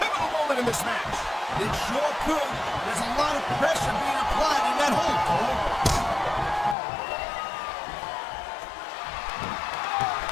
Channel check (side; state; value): right; drops out; at 6.8 s